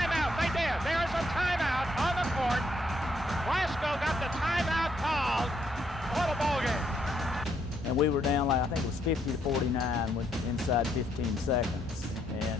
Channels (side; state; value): both; normal; correlation 0.73